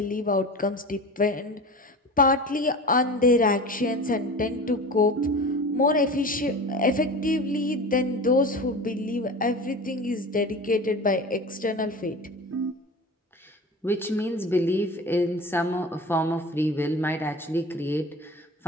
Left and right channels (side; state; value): both; normal; correlation 0.34